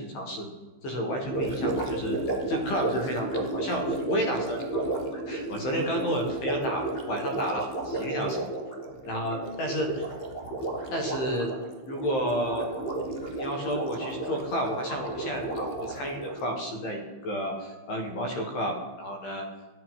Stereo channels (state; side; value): late; right; 15 ms